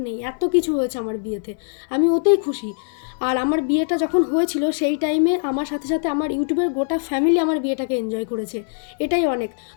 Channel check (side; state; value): right; silent; digital silence